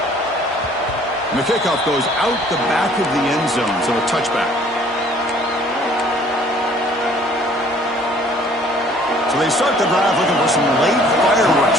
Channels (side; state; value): both; normal; correlation 0.56